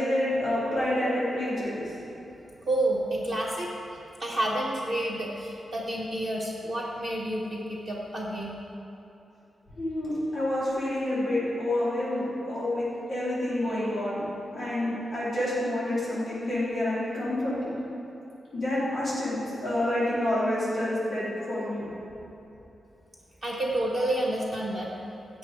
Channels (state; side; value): normal; both; correlation 0.85